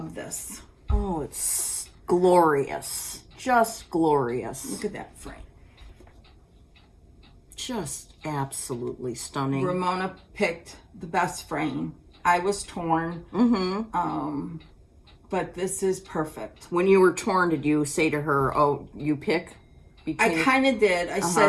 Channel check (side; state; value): both; identical; correlation 1.00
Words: this. Oh, it's glorious. Just glorious. Look at that frame. Just absolutely stunning. Ramona picked the best frame. I was torn. But this is perfect. When you were torn, did you say to her, oh, you pick? I kind of did. I